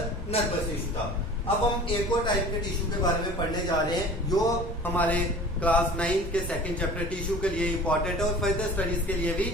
नर्वस टिश्यू था। अब हम एक और टाइप के टिश्यू के बारे में पढ़ने जा रहे हैं जो हमारे क्लास 9 के सेकंड चैप्टर टिश्यू के लिए इंपॉर्टेंट है और फर्दर स्टडीज के लिए भी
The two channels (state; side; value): normal; both; correlation 0.42